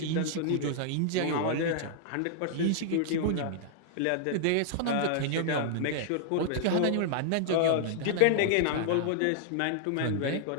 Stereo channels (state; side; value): different; both; correlation -0.01